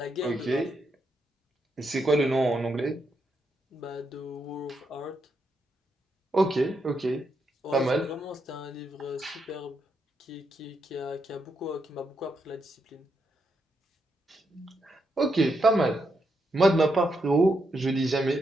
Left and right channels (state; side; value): normal; both; correlation 0.81